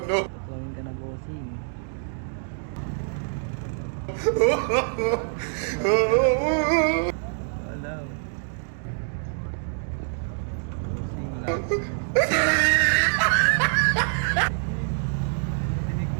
Tuwing ka na bossing. Wala. Bossing lang.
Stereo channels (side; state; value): left; silent; digital silence